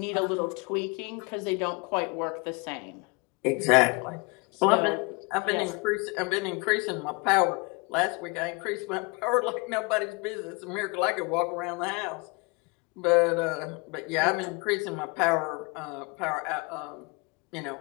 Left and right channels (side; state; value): right; quieter; 29.5 dB